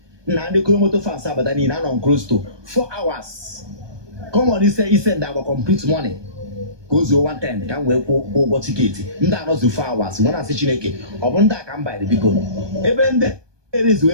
na ndị kolomoto fans abada niile anọ close to 4 hours common ise ndị agba complete money ka o zuo 110 ka m wee kwụ ụgwọ tiketi ndị anọzi 4 hours nwere asị Chineke ọ bụ ndị a ka m bayịrị biko ebe ndị erezu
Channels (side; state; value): left; late; 1.2 ms